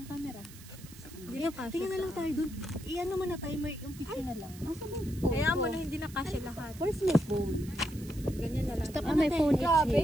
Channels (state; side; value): noise; right; hiss, 19 dB below the sound